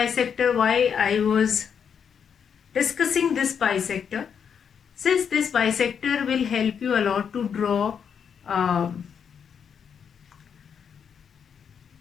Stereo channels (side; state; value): right; quieter; 7.3 dB